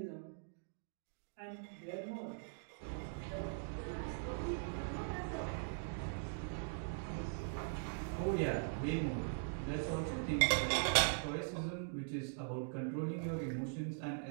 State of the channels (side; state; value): left; silent; digital silence